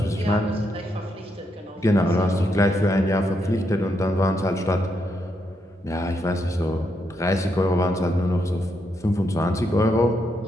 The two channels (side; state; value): both; normal; correlation 0.80